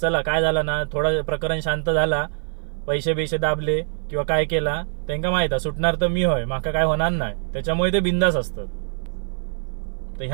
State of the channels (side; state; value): left; silent; 56 dB below the other